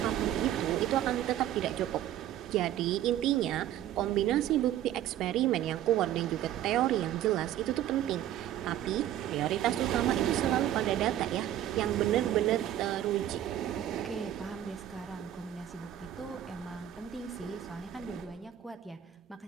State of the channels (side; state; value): left; quieter; 12.0 dB